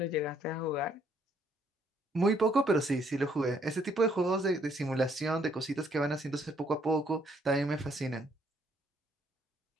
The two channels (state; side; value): normal; both; correlation 0.68